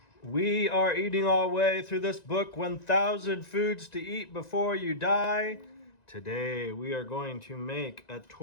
We are eating our way through this book, 1,000 Foods to Eat Before You Die. Today we are going to make a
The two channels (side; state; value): right; late; 1.9 ms